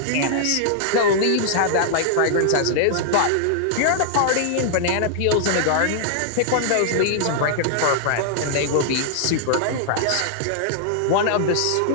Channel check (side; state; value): both; different; correlation -0.01